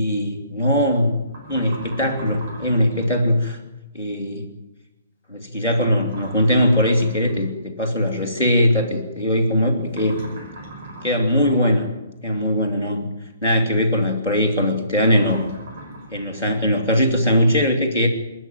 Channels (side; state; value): both; inverted; correlation -0.62